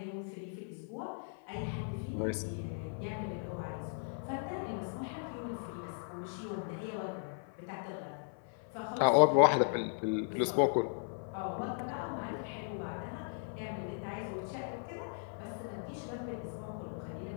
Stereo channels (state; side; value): silent; right; 53 dB below the other